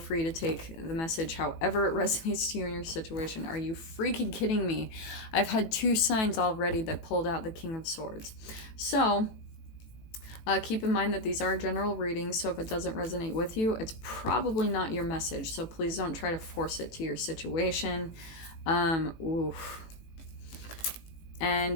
to take the message however it resonates to you in your situation. Are you freaking kidding me? I've had 2 signs already that pulled out the King of Swords. So, keep in mind that these are general readings, so if it doesn't resonate with you, it's probably not your message. So please don't try to force it to your situation. Oof.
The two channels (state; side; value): late; right; 18 ms